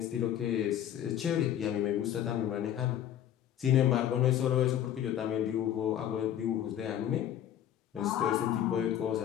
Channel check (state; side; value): quieter; right; 10.9 dB